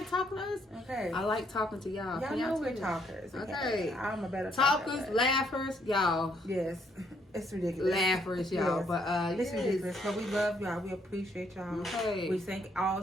talking to us? Okay. I like talking to y'all. Y'all know we're talkers. Okay. I'm a better talkers, talker, laughers, y'all. Yes. It's ridiculous. Laughers, y'all. Yes. But it's ridiculous. But we love y'all. We appreciate y'all. Okay. We thank all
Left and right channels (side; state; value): both; normal; correlation 0.70